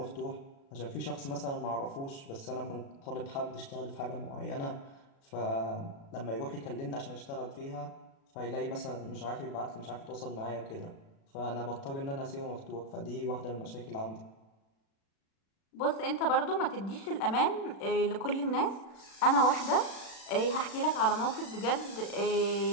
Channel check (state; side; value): late; right; 36 ms